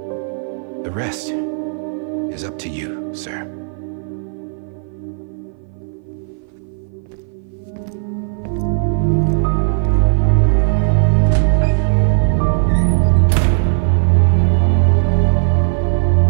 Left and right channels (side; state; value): left; silent; 57 dB below the other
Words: The rest is up to you, sir.